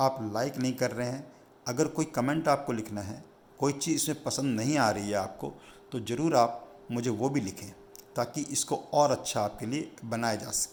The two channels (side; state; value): both; identical; correlation 1.00